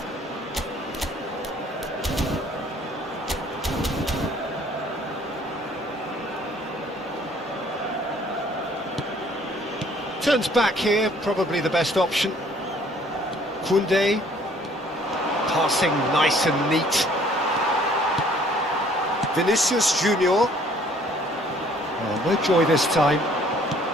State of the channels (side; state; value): both; normal; correlation 0.58